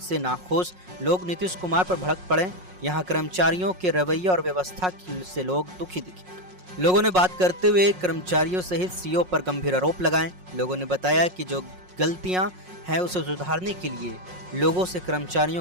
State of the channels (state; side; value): late; left; 5.5 ms